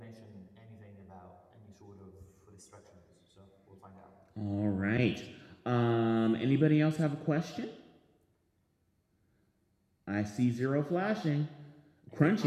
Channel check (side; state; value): both; identical; correlation 1.00